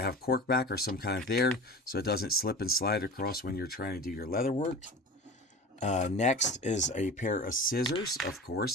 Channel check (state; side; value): normal; both; correlation 0.34